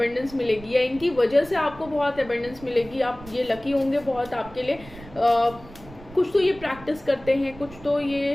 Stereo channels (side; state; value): right; noise; rumble, 18 dB below the sound